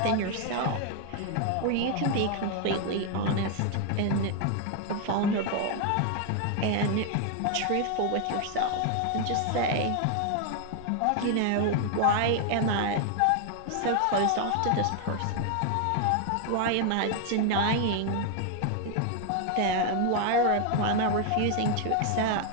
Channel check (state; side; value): different; both; correlation 0.00